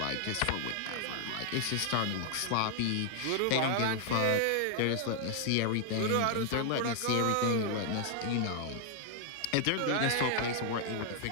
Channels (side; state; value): both; different; correlation 0.00